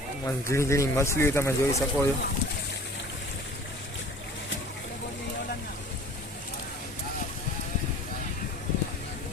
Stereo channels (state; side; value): normal; both; correlation 0.46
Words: ઝીણી ઝીણી મછલીઓ તમે જોઈ શકો છો।